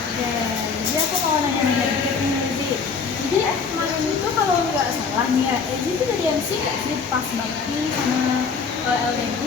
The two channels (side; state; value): right; quieter; 5.4 dB